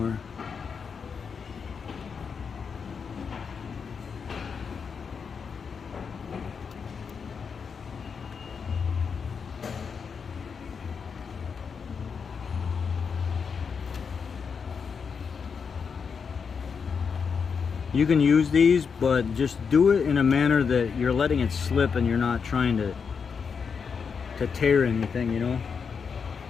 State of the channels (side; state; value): right; quieter; 6.0 dB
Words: You can use these, but just do it in a manner that you're letting it slip and you're not trying to tear anything, you know?